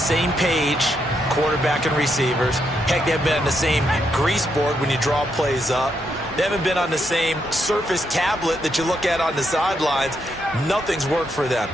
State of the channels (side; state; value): both; normal; correlation 0.79